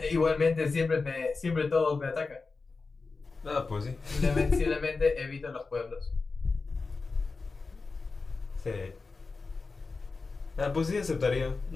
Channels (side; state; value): right; quieter; 4.1 dB